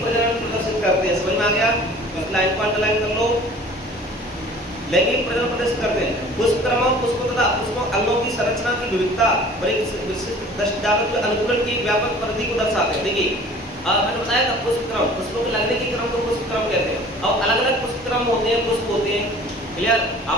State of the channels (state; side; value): normal; both; correlation 0.47